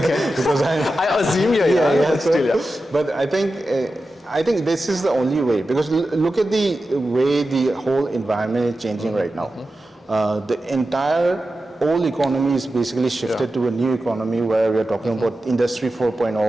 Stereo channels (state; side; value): normal; both; correlation 0.92